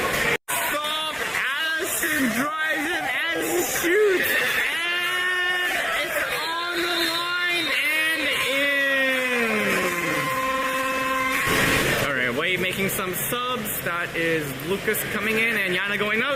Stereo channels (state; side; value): identical; both; correlation 1.00